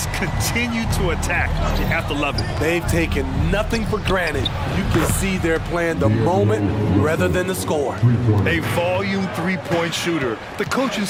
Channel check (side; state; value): both; identical; correlation 1.00